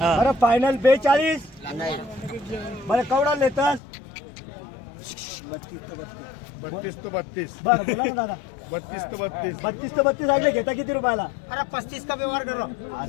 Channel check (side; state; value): right; drops out; at 3.8 s